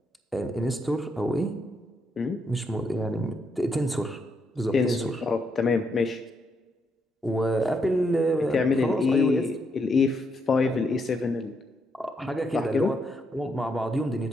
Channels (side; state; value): both; normal; correlation 0.78